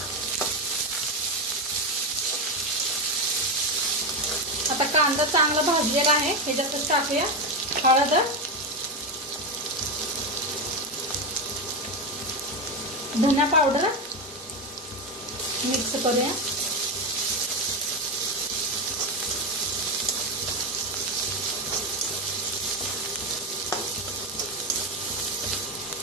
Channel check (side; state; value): both; normal; correlation 0.12